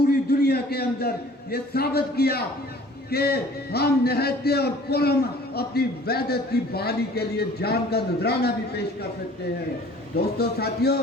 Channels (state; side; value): normal; both; correlation 0.50